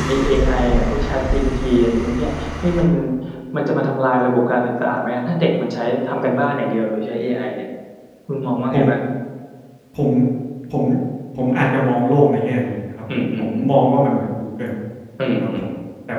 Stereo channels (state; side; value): identical; both; correlation 1.00